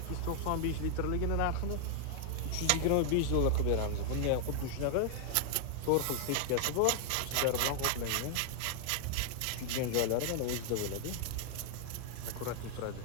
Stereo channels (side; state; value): both; different; correlation 0.00